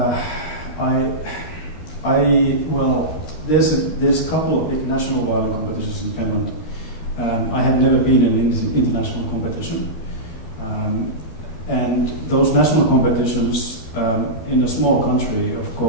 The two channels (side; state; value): right; late; 12 ms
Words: Well, there's a couple of international violin competitions in Finland. I had never been in an international competition, and those national competitions in a small country, of